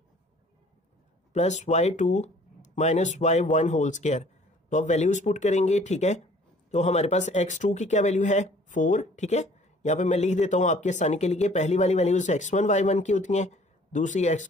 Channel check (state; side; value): normal; both; correlation 0.54